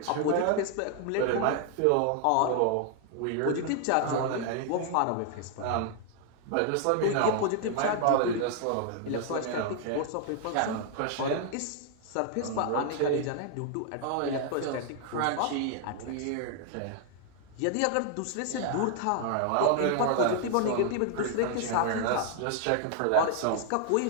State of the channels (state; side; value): different; both; correlation 0.00